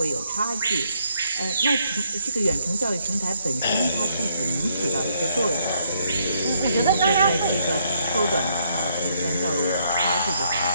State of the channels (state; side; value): inverted; both; correlation -0.71